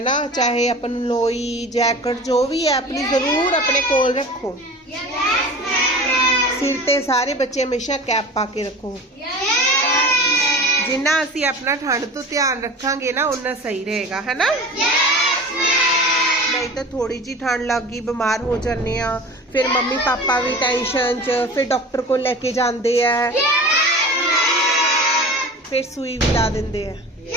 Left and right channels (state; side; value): normal; both; correlation 0.37